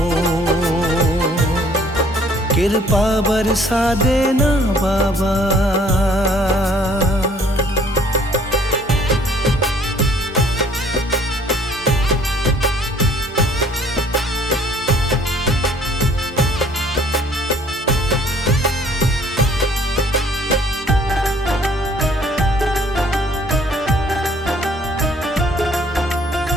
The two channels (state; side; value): normal; both; correlation 0.58